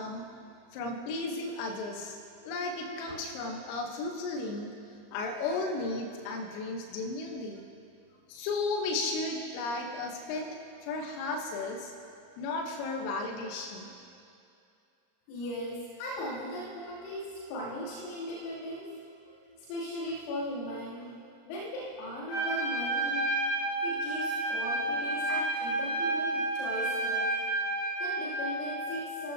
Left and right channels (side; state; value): right; late; 38 ms